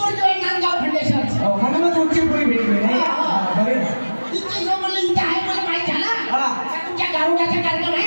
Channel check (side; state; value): both; inverted; correlation -1.00